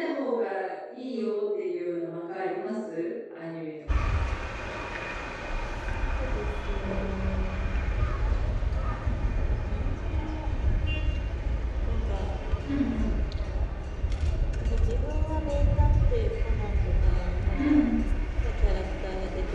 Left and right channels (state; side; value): identical; both; correlation 1.00